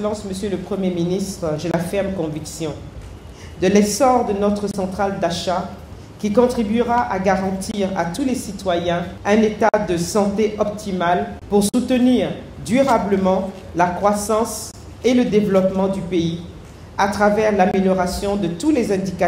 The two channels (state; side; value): identical; both; correlation 1.00